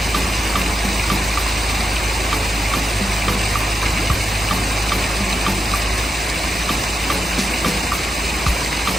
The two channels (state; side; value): normal; both; correlation 0.86